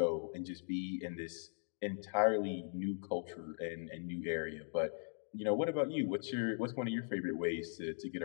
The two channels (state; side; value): silent; right; digital silence